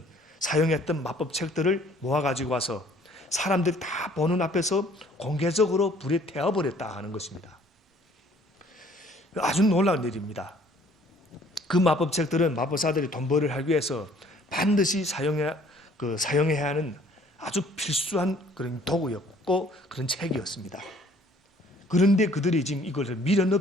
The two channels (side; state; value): both; normal; correlation 0.57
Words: 사용했던 마법책들을 모아가지고 와서 사람들이 다 보는 앞에서 공개적으로 불에 태워버렸다 하는 것입니다. 아주 놀라운 일입니다. 그 마법책들은 마법사들이 돈 벌을 하기 위해서 반드시 사용해야 하는 아주 필수한 그런 도구였고 그런 책이었습니다. 그런데 그들이 지금 이것을 미련